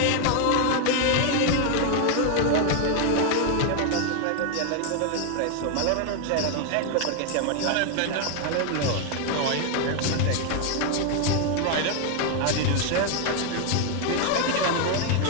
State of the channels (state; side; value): different; both; correlation 0.01